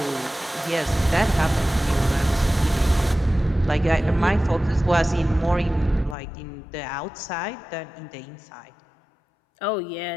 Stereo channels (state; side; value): drops out; right; at 6.2 s